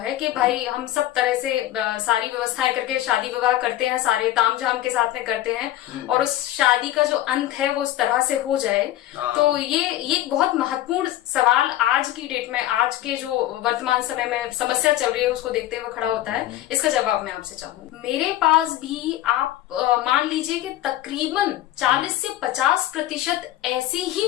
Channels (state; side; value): quieter; right; 14.1 dB